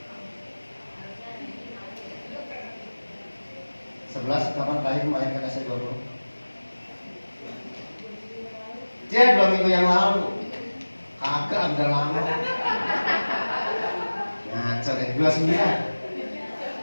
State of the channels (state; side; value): inverted; both; correlation -1.00